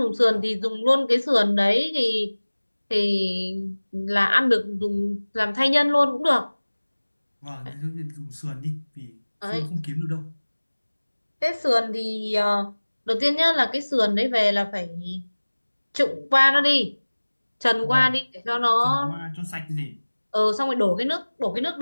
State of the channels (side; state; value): both; inverted; correlation -1.00